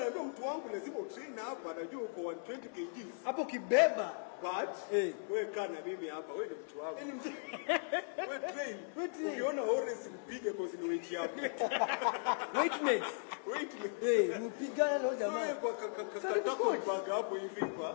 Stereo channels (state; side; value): silent; right; digital silence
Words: mtu wangu lazima utrain hapa, najua uko 120 kgs. Hapo kibeba. But wewe kana mimi hapa, wewe ni mtu wangu. Wewe train. Ukiona Horace mpige cause ni weight yako. Weight mates. Mpigana na jamaa. Wewe kwa katako bag hapo hivi